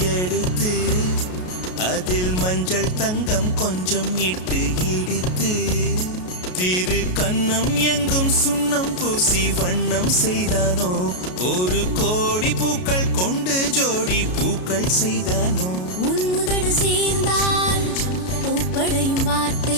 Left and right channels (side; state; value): right; late; 33 ms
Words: எடுத்து அதில் மஞ்சள் தங்கம் கொஞ்சம் இட்டு இடித்து திரு கண்ணம் எங்கும் சுண்ணம் பூசி வண்ணம் செய்தானோ ஒரு கோடி பூக்கள் கொண்டு ஜோடி பூக்கள் செய்தானோ உன் உதடு சேர்ந்தால் பூப்படையும் வார்த்தை